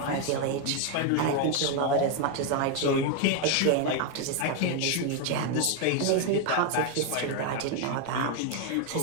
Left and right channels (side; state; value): both; different; correlation 0.01